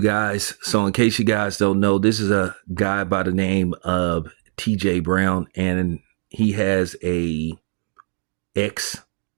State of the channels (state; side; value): silent; left; 65 dB below the other